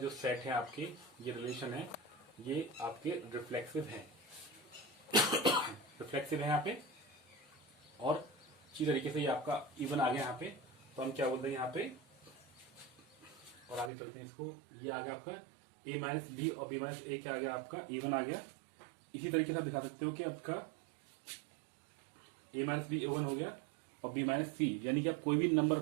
सेट हैं आपके, ये रिलेशन है, ये आपके रिफ्लेक्सिव हैं, रिफ्लेक्सिव है यहाँ पे। और इसी तरीके से ये आपका इवन आ गया यहाँ पे, तो हम क्या बोलते हैं यहाँ पे, और आगे चलते हैं इसको, ये आ गया आपका a माइनस बी और b माइनस ए, क्या आ गया आपका इवन आ गया। इसी तरीके से आप दिखा सकते हो कि आपका a माइनस बी इवन हो गया और b माइनस सी, यानी कि आप कोई भी नंबर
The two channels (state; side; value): drops out; left; at 13.9 s